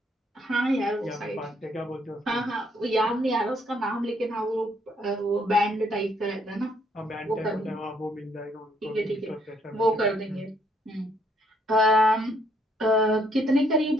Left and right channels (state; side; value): normal; both; correlation 0.69